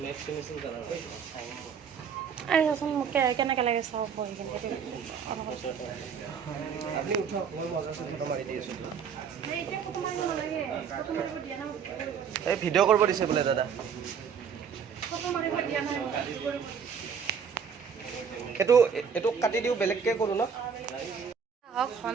আরে চাচোন মোক কেনেকৈ লাগে চাব বহি কিনে আপুনি উঠক, মই মজাটো ফটো মাৰি দি আছোঁ। এই ভিডিঅ' কৰিব দিছে বোলে দাদা। এইটো কাটি দিওঁ, বেলেগকৈ কৰোঁ ন? হওক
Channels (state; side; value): quieter; left; 6.9 dB